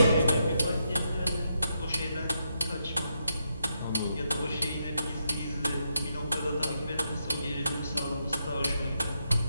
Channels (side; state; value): both; inverted; correlation -0.81